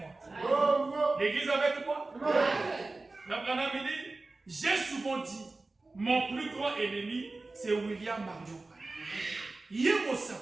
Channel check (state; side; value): quieter; left; 3.3 dB